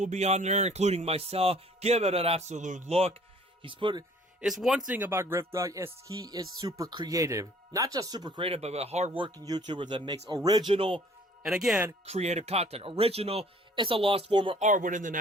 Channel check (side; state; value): both; normal; correlation 0.55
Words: be on there, including myself. Give it an absolute look. It's one thing about GriffDawg is he is super creative. Not just super creative, but a hard-working YouTuber that makes original, and again, creative content. Original is a lost form of art within the